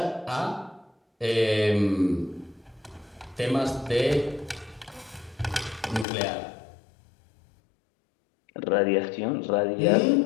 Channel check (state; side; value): drops out; right; at 6.1 s